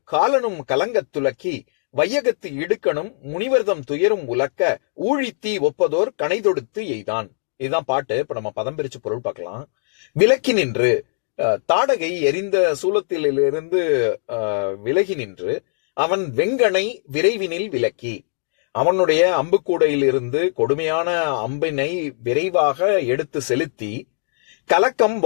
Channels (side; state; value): right; silent; digital silence